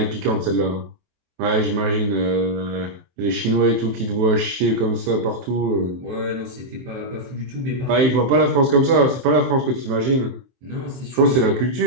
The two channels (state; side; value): late; left; 23 ms